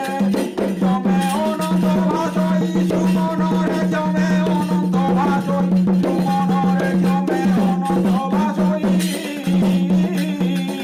ক্ষমে অনন্ত ভাষই সুমন রে ক্ষমে অনন্ত ভাষই সুমন রে ক্ষমে অনন্ত ভাষই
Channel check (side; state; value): both; identical; correlation 1.00